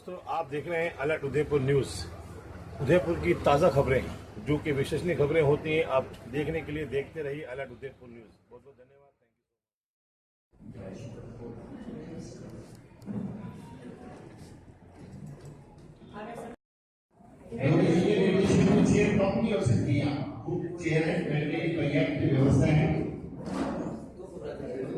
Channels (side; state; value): both; identical; correlation 1.00